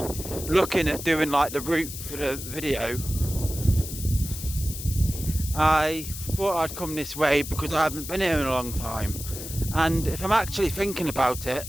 looking at doing like the route for the video, I thought I'd come this way because I haven't been here in a long time. And if I'm actually thinking about it,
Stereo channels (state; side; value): noise; left; hiss, 9 dB below the sound